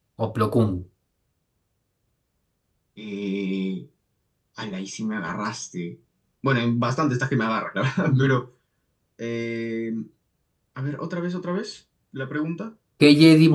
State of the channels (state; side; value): identical; both; correlation 1.00